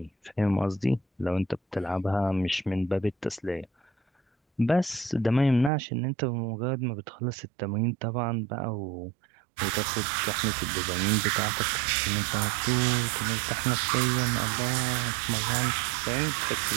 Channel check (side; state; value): left; drops out; at 5.7 s